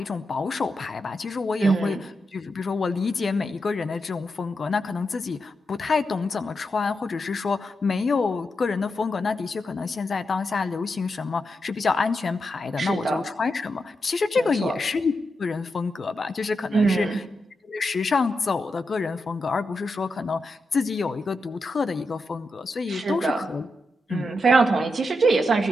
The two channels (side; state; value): both; normal; correlation 0.86